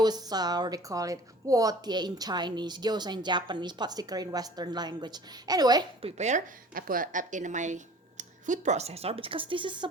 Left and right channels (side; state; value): both; normal; correlation 0.46